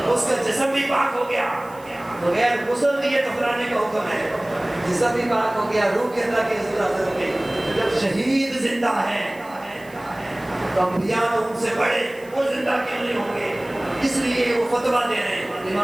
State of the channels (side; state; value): right; noise; hiss, 25 dB below the sound